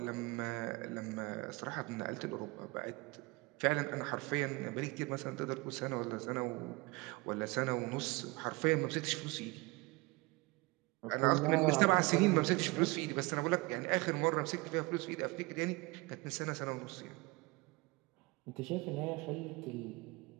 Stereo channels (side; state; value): left; quieter; 24.8 dB